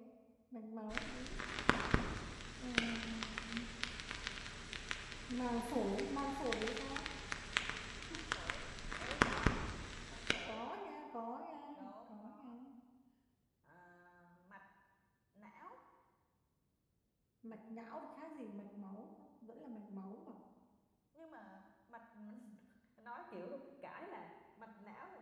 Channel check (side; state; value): both; identical; correlation 1.00